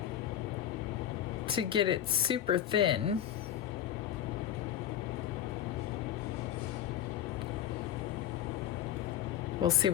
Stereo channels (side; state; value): right; quieter; 11.0 dB